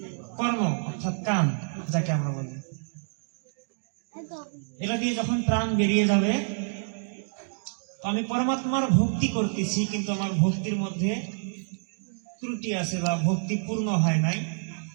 কর্ম অর্থাৎ কান যাকে আমরা বলি। এটা দিয়ে যখন প্রাণ বেরিয়ে যাবে, আমি পরমাত্মার ভক্তি করতেছি কিন্তু আমার ভক্তির মধ্যে ত্রুটি আছে বা ভক্তি পূর্ণ হয় নাই,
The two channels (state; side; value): silent; left; digital silence